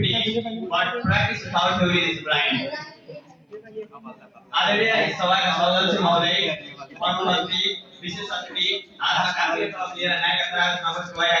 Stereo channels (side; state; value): both; identical; correlation 1.00